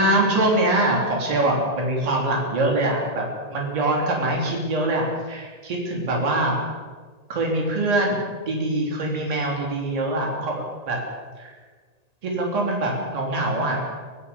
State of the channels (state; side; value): late; left; 1.8 ms